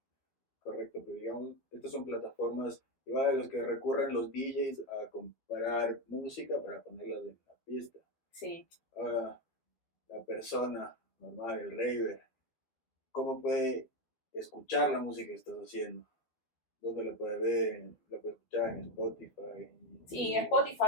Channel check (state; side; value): late; right; 12 ms